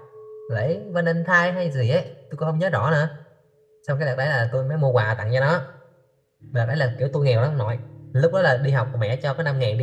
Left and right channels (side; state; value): both; identical; correlation 1.00